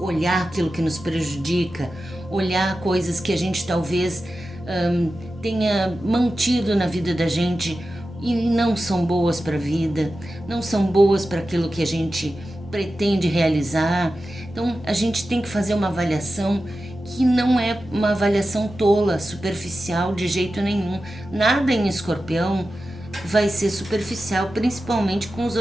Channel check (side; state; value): both; normal; correlation 0.93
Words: aquilo que nos prejudica, olhar coisas que a gente talvez tenha mantido na vida da gente e não são boas para a vida, não são boas para aquilo que a gente pretende realizar. Então a gente tem que fazer uma avaliação que não é uma avaliação tola, superficial de jeito nenhum. Nada em Escorpião vai ser superficial, principalmente com os